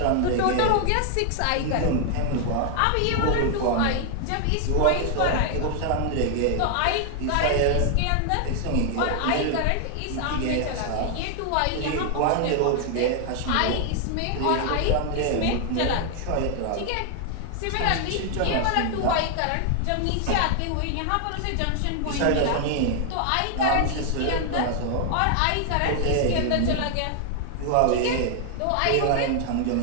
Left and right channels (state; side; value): different; both; correlation 0.00